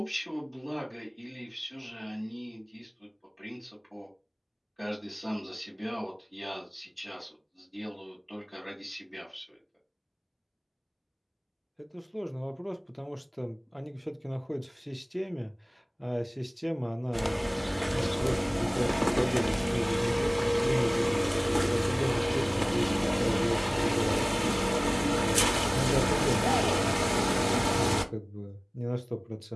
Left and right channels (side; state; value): both; identical; correlation 1.00